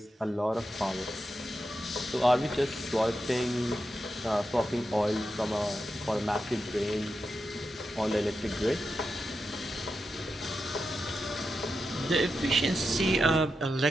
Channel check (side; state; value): both; normal; correlation 0.88